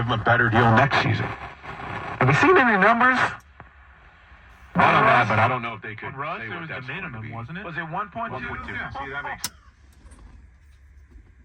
him a better deal next season. Have you seen any numbers? I don't know, but I don't know if they could Russ, say it what was that's the going to minimum, be. wasn't it? Was it 1.2? 1.2. Yeah. See, that makes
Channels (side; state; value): both; identical; correlation 1.00